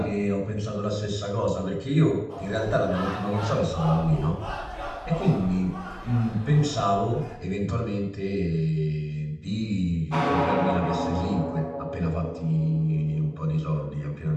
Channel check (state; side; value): identical; both; correlation 1.00